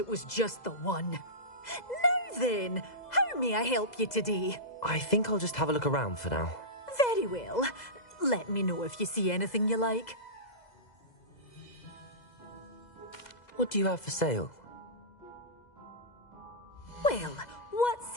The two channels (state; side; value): late; right; 2.0 ms